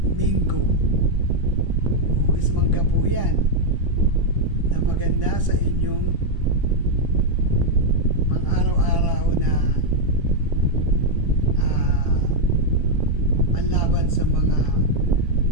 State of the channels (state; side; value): late; left; 1.0 ms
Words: mango. Hugis mangga po yan na maganda sa inyong pang araw-araw na panlaban sa mga